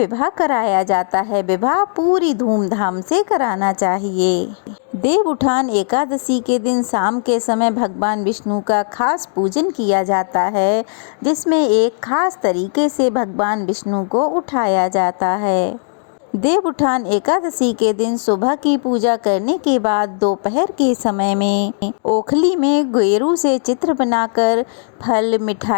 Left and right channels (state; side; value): silent; right; digital silence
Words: कराया जाता है। विवाह पूरी धूमधाम से कराना चाहिए। देव उठान एकादशी के दिन शाम के समय भगवान विष्णु का खास पूजन किया जाता है, जिसमें एक खास तरीके से भगवान विष्णु को उठाया जाता है। देव उठान एकादशी के दिन सुबह की पूजा करने के बाद दोपहर के समय में ओखली में गेरू से चित्र बनाकर फल,